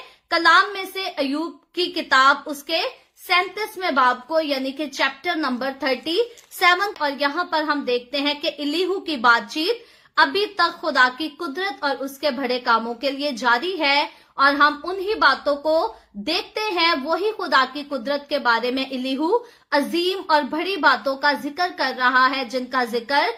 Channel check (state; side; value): identical; both; correlation 1.00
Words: कलाम में से अयूब की किताब उसके 37वें बाब को यानी कि चैप्टर नंबर 37, और यहाँ पर हम देखते हैं कि इलीहू की बातचीत अभी तक खुदा की कुदरत और उसके बड़े कामों के लिए जारी है, और हम उन्हीं बातों को देखते हैं। वही खुदा की कुदरत के बारे में इलीहू अजीम और बड़ी बातों का जिक्र कर रहा है, जिनका जिक्र